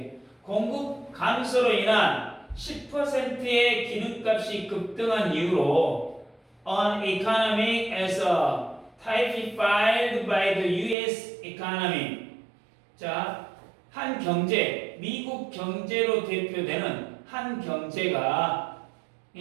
공급 감소로 인한 10%의 기름값이 급등한 이후로 an economy as typified by the U.S. economy. 자, 한 경제, 미국 경제로 대표되는 한 경제가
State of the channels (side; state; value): left; drops out; at 11.0 s